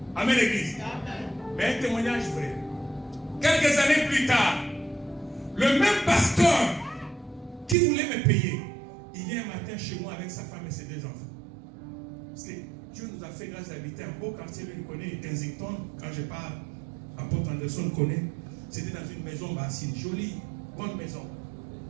Amen l'église. Mais un témoignage vrai. Quelques années plus tard, le même pasteur qui voulait me payer, il vient un matin chez moi avec sa femme et ses deux enfants. Parce que Dieu nous a fait grâce d'habiter un beau quartier, lui connaît Kensington, quand je parle, apôtre Anderson connaît. C'était dans une maison basse, une jolie, bonne maison.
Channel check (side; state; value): left; drops out; at 7.8 s